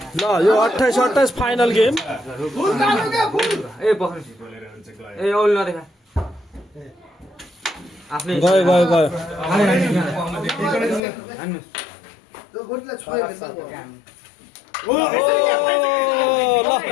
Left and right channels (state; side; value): drops out; right; at 11.0 s